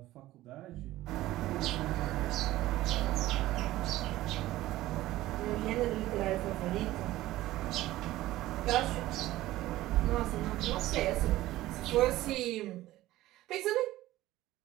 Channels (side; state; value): left; quieter; 16.1 dB